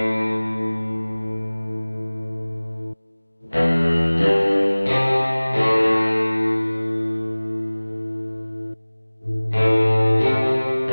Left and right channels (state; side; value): inverted; both; correlation -1.00